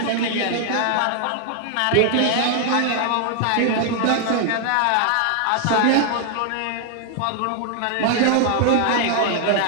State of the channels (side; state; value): both; different; correlation 0.00